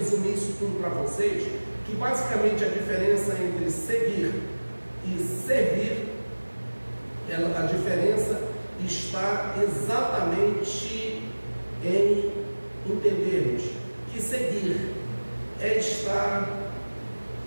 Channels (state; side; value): inverted; both; correlation -1.00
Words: isso tudo para vocês, que basicamente a diferença entre seguir e servir, a diferença está exatamente em entendermos que seguir é estar